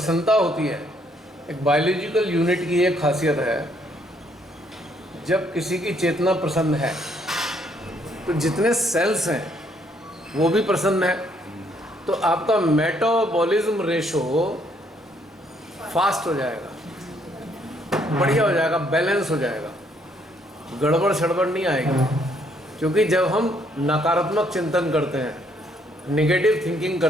होती है, एक बायोलॉजिकल यूनिट की एक खासियत है, जब किसी की चेतना प्रसन्न है तो जितने सेल्स हैं वो भी प्रसन्न है, तो आपका मेटाबॉलिज्म रेशो फास्ट हो जाएगा, बढ़िया हो जाएगा, बैलेंस हो जाएगा, गड़बड़ सड़बड़ नहीं आएगी। क्योंकि जब हम नकारात्मक चिंतन करते हैं, नेगेटिव थिंकिंग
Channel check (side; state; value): both; normal; correlation 0.69